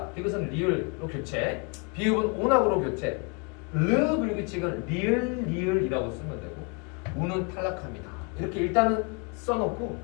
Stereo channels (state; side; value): quieter; right; 33.1 dB